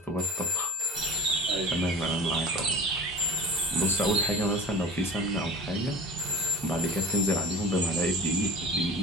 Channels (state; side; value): normal; both; correlation 0.38